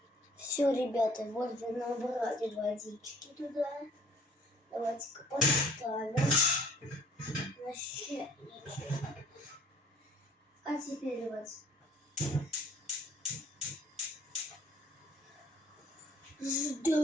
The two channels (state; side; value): normal; both; correlation 0.56